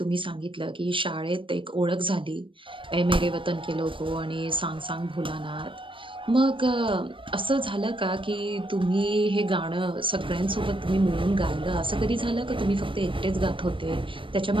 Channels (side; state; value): left; late; 0.25 ms